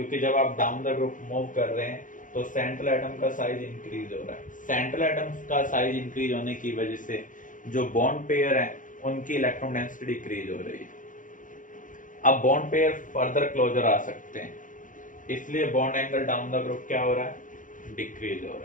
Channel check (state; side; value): late; right; 0.38 ms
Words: जब आप डाउन द ग्रुप मूव कर रहे हैं तो सेंट्रल एटम का साइज इंक्रीज हो रहा है। सेंट्रल एटम का साइज इंक्रीज होने की वजह से जो बॉन्ड पेयर है उनकी इलेक्ट्रॉन डेंसिटी डिक्रीज हो रही है। अब बॉन्ड पेयर फर्दर क्लोजर आ सकते हैं, इसलिए bond angle down the group क्या हो रहा है, डिक्रीज हो